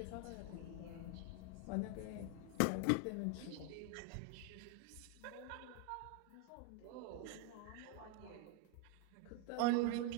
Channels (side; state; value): both; different; correlation 0.01